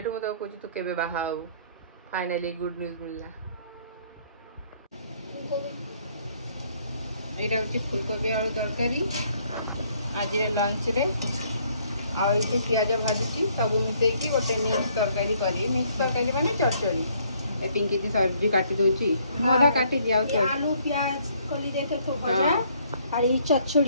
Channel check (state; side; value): inverted; both; correlation -0.65